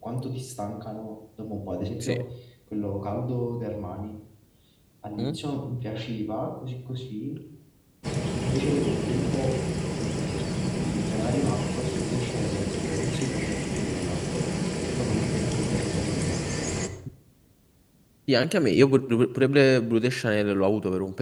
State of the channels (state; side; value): identical; both; correlation 1.00